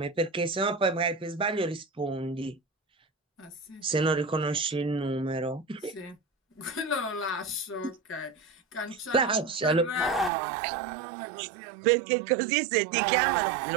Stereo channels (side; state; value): left; drops out; at 10.3 s